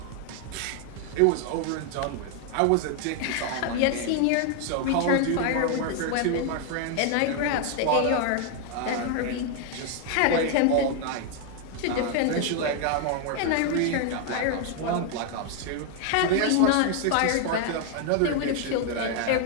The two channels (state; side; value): different; both; correlation 0.00